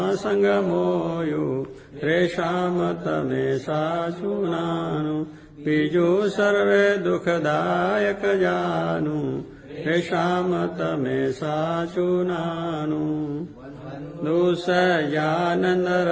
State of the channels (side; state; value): both; identical; correlation 1.00